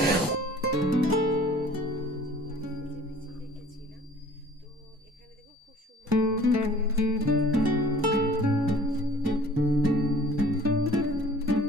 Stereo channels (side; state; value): both; normal; correlation 0.49